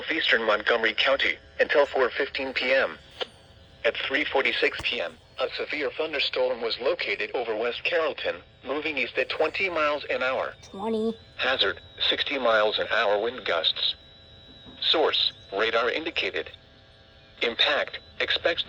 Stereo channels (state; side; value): identical; both; correlation 1.00